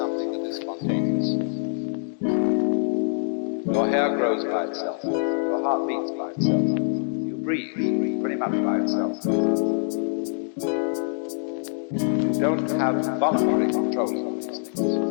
that is spontaneous. Your hair grows by itself. Your heart beats by itself. You breathe pretty much by itself. You don't have voluntary control of these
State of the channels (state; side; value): silent; right; digital silence